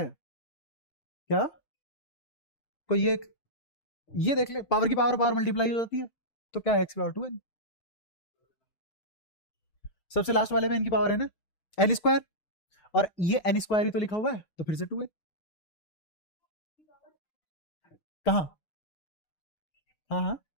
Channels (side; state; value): right; late; 6.5 ms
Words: क्या? कोई ये देख ले, पावर की पावर पावर मल्टीप्लाई हो जाती है, तो क्या एक्स पावर 2 एन। सबसे लास्ट वाले में इनकी पावर है ना एन स्क्वायर, और ये एन स्क्वायर ही तो लिखा हुआ है, तो फिर से 2 एन। कहाँ? हाँ हाँ